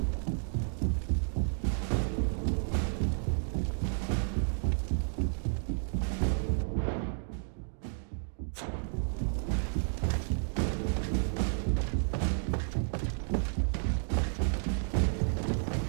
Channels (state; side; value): silent; left; digital silence